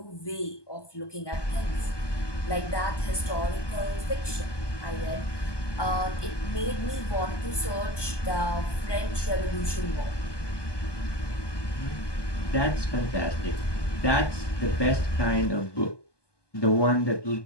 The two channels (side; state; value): right; late; 1.2 ms